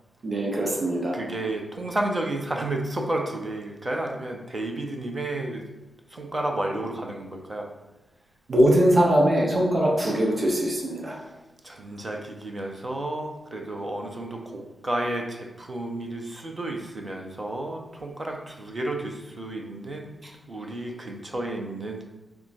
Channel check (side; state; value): both; normal; correlation 0.88